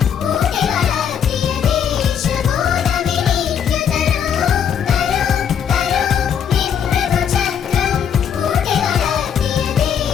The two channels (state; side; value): quieter; right; 8.2 dB